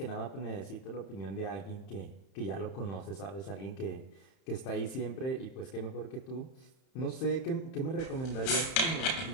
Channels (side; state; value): right; late; 31 ms